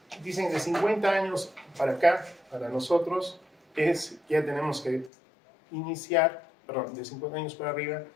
dicen de 50 años para acá, para nosotros, ya tenemos que iniciar, perdón, de 50 años para arriba,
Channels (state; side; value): drops out; right; at 5.1 s